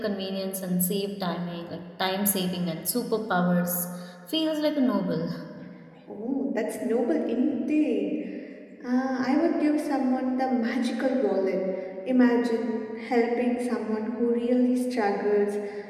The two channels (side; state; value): both; identical; correlation 1.00